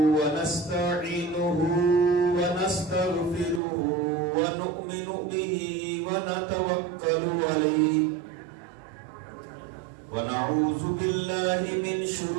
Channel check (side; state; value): left; drops out; at 3.6 s